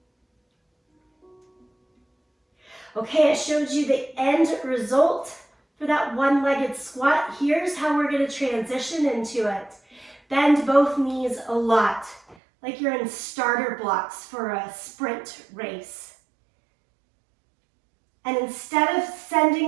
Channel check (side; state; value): left; drops out; at 12.4 s